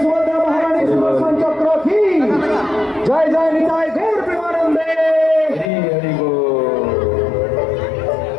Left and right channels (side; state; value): right; drops out; at 5.7 s